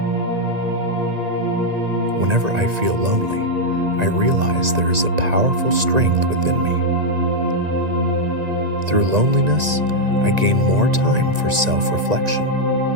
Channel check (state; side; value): late; left; 1.9 ms